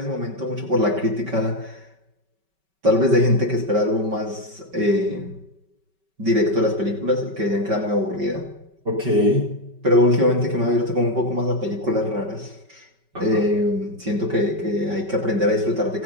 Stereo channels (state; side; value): late; left; 5.2 ms